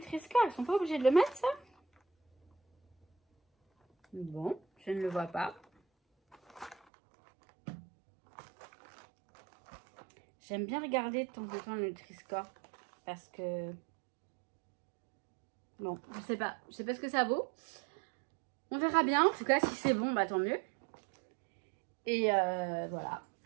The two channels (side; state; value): left; drops out; at 6.8 s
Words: ils sont pas obligés de le mettre ça? Bon, je ne le vois pas. J'aime bien regarder de temps en temps le Nutri-Score. Parce que... Bon, je sais pas ce que ça vaut. On verra bien. En tout cas, si c'est bon, bah tant mieux. Et voilà.